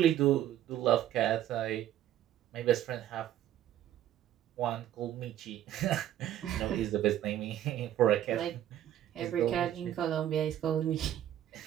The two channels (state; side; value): quieter; left; 11.9 dB